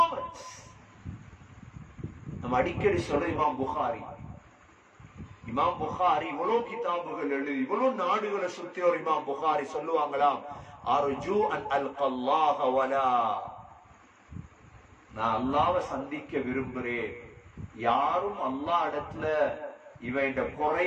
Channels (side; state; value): both; identical; correlation 1.00